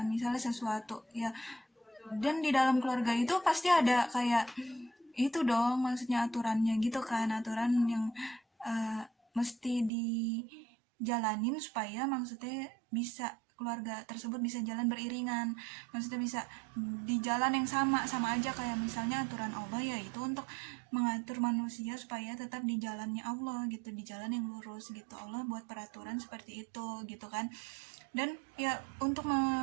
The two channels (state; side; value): drops out; left; at 9.9 s